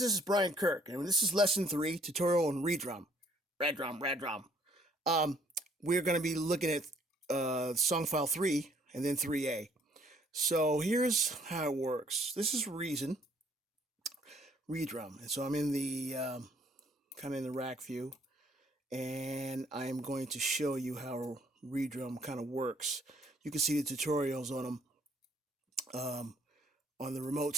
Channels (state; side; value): normal; both; correlation 0.62